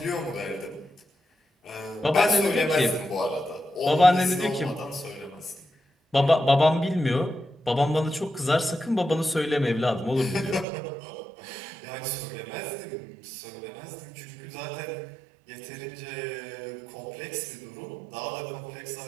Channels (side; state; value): left; drops out; at 10.7 s